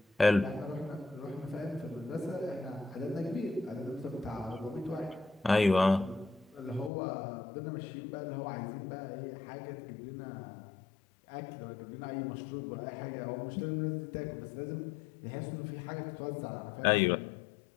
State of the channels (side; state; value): right; drops out; at 6.9 s